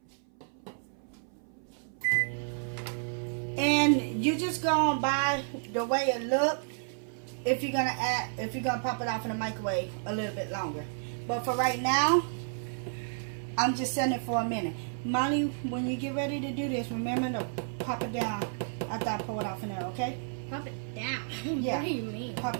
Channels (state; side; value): silent; left; 57 dB below the other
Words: And you just go by the way it look. If you're gonna pop it off in the microwave a little bit longer. But for right now, I'm just setting it for a minute. Molly, when you get ready to do this, remember to pop it down after I pull it off in there, okay? Pop it down. Yeah. What do you mean? Pop